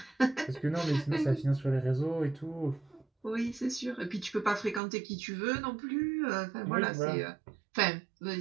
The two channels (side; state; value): left; drops out; at 4.8 s